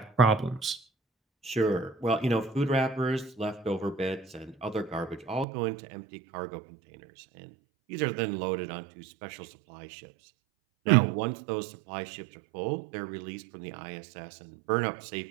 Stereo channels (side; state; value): left; drops out; at 5.5 s